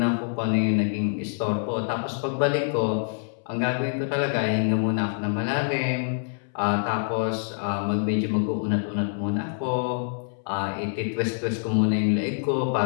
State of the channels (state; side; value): silent; right; 61 dB below the other